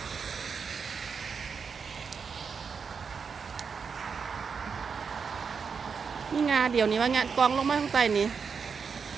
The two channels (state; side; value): quieter; left; 5.9 dB